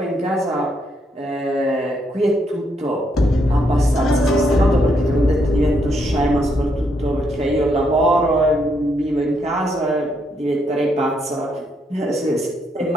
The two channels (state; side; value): normal; both; correlation 0.76